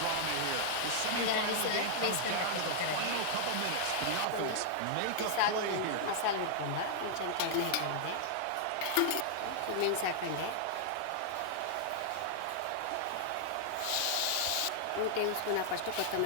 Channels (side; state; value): both; different; correlation -0.01